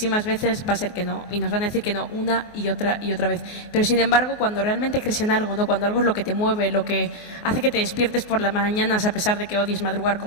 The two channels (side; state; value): right; late; 24 ms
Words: veces va a ser que no, y nos van a decir que no una y otra vez. Pero sin embargo, cuando realmente crees en algo, ¿no? Cuando algo es lo que te mueve, lo que hace que te despiertes por las mañanas a pesar de que odies madrugar